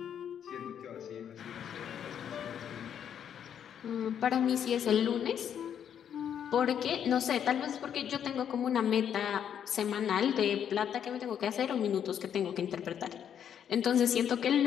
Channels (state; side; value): quieter; right; 8.9 dB